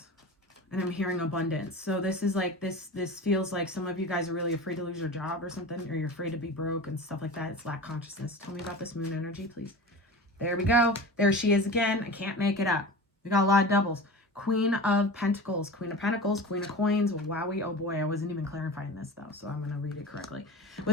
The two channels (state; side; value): normal; both; correlation 0.33